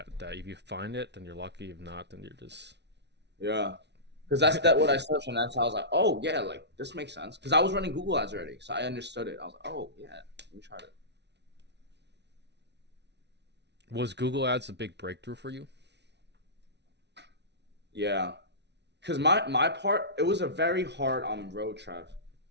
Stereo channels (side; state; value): left; late; 0.50 ms